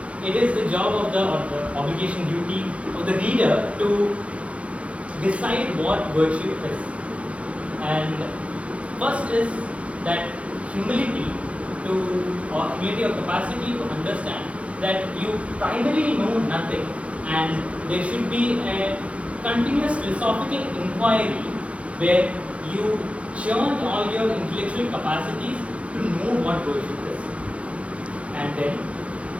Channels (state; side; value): late; left; 0.063 ms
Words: it is the job of the, or the obligation duty of the reader to decide what virtue is. And first is that humility or humility of capacity to understand that you primarily know nothing, and there should be a continuous philosophical inquiry where you churn all your intellectual capacities to know what virtue is. And then,